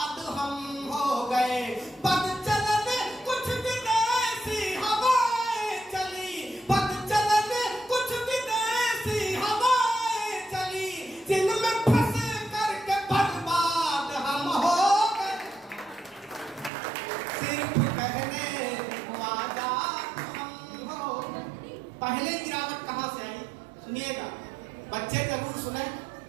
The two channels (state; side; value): drops out; left; at 16.7 s